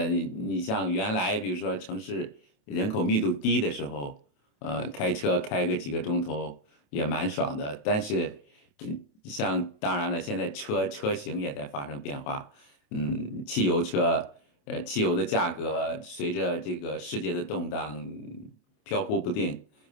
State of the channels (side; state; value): right; late; 28 ms